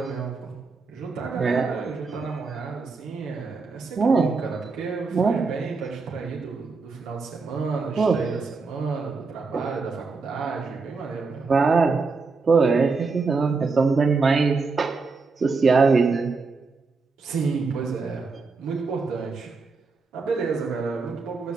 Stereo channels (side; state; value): left; quieter; 4.4 dB